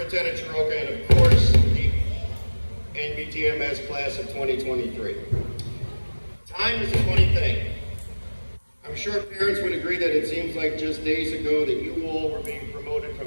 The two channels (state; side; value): inverted; both; correlation -1.00